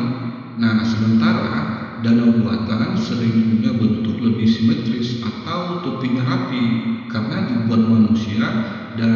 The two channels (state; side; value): identical; both; correlation 1.00